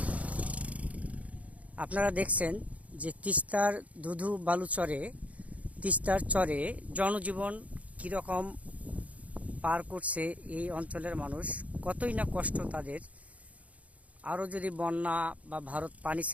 আপনারা দেখছেন যে তিস্তার ধুধু বালুচরে, তিস্তার চরে জনজীবন কীরকম পার করছে এই অঞ্চলের মানুষ, কতই না কষ্ট তাদের। আরও যদি বন্যা বা ভারত পানি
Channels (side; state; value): left; late; 0.068 ms